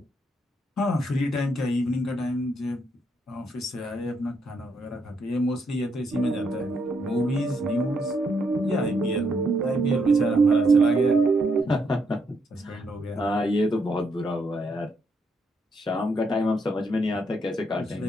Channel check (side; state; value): both; normal; correlation 0.76